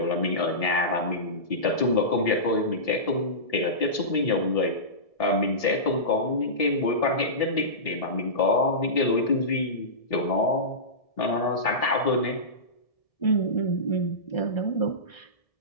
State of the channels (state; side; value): late; right; 1.7 ms